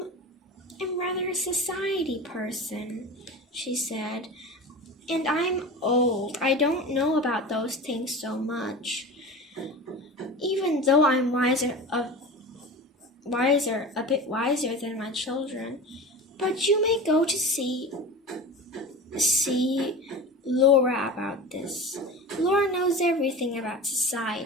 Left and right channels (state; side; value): normal; both; correlation 0.31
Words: rather a society person, she said. And I'm old. I don't know about those things so much. Even though I'm a bit wiser than my children. But you may go to see Laura about this. Laura knows everything about